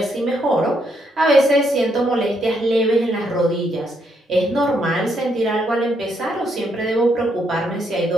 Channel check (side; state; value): both; normal; correlation 0.75